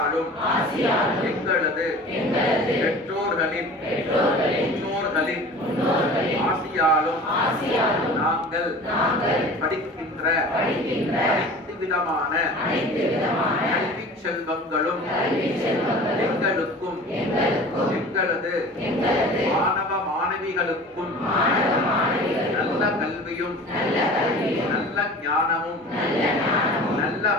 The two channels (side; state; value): both; normal; correlation 0.40